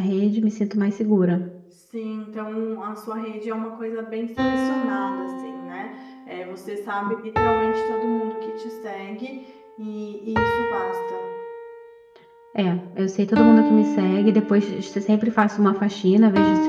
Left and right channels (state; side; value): identical; both; correlation 1.00